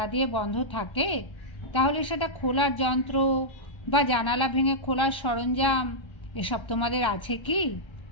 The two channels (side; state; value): right; late; 1.3 ms